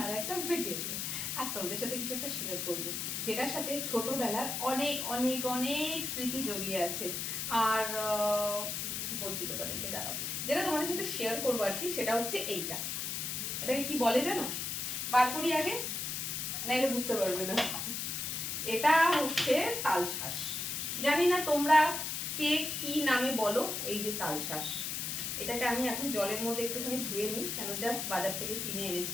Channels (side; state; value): left; noise; hiss, 2 dB below the sound